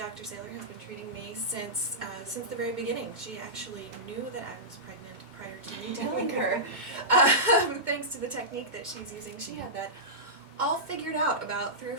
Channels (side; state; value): left; late; 2.2 ms